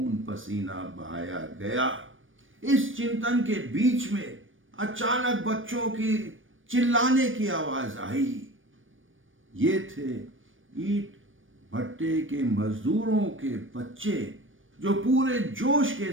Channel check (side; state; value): left; late; 0.57 ms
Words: पसीना बहाया गया? इस चिंतन के बीच में अचानक बच्चों की चिल्लाने की आवाज आई। ये थे ईंट भट्टे के मजदूरों के बच्चे, जो पूरे जोश के